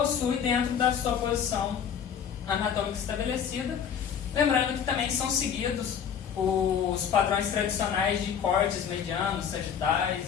dentro da sua posição anatômica estabelecida, lembrando que também são seguidos os padrões tradicionais de cortes medianos, sagitais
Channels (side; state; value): right; quieter; 7.9 dB